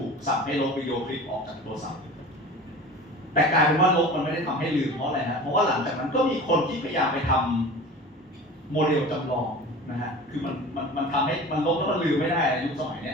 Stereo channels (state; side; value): normal; both; correlation 0.37